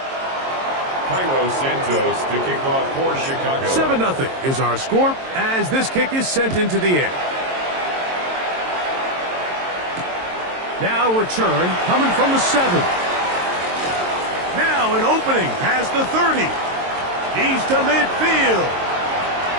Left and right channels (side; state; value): left; late; 22 ms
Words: Cairo Santos to kick off for Chicago. 7-0 is our score as this kick is sent into the air. Now return coming from the 7. Now an opening past the 30. He's to midfield.